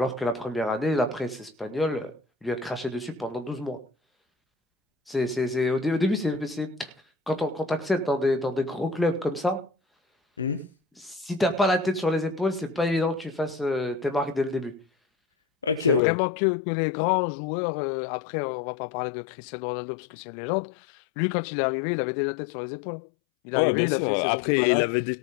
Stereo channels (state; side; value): drops out; right; at 16.0 s